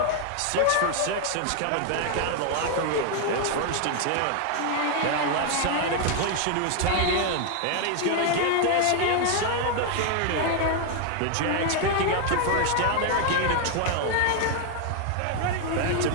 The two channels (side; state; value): both; different; correlation 0.00